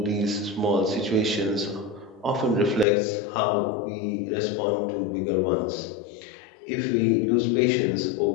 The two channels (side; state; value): right; drops out; at 2.9 s